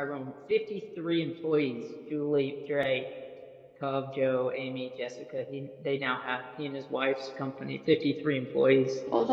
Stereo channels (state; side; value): identical; both; correlation 1.00